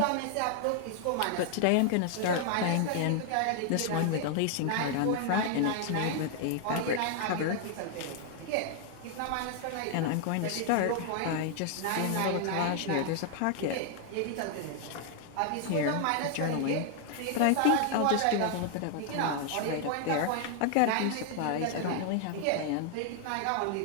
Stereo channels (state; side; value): different; both; correlation 0.00